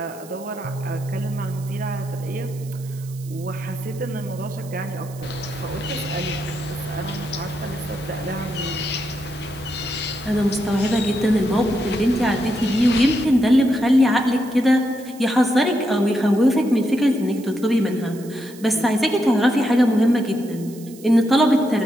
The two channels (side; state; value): right; noise; hiss, 21 dB below the sound